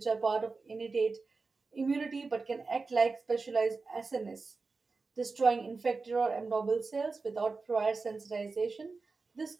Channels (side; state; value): left; quieter; 4.1 dB